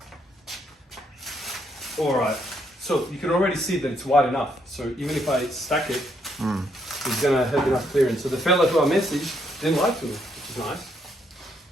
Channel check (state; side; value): normal; both; correlation 0.74